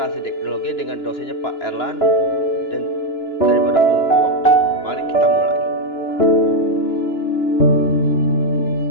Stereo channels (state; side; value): late; right; 2.9 ms